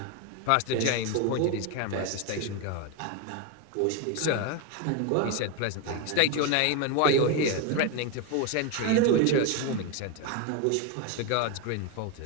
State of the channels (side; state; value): both; different; correlation 0.02